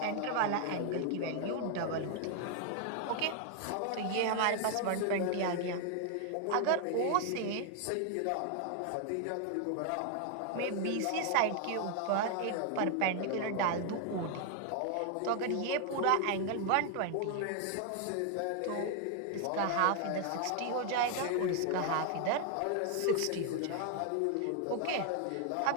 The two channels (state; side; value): different; both; correlation 0.00